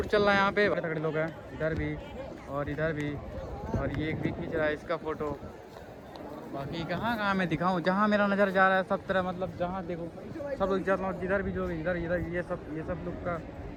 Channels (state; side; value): identical; both; correlation 1.00